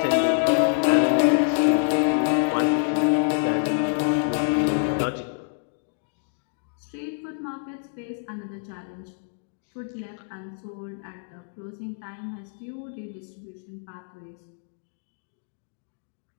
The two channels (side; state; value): right; silent; digital silence